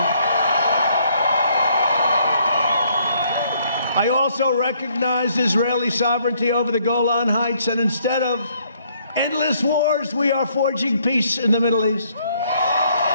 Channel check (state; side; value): inverted; both; correlation -0.67